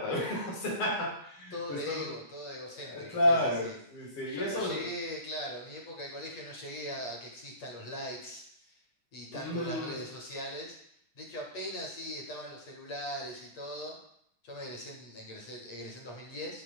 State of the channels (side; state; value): right; late; 8.4 ms